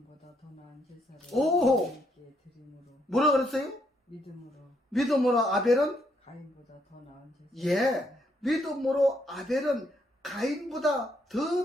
더 나은 제사를 오! 하나님께 드림으로. 뭐라 그랬어요? 믿음으로 아벨은? 가인보다 더 나은 제사. 예, 믿음으로 아벨은 가인보다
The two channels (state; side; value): normal; both; correlation 0.73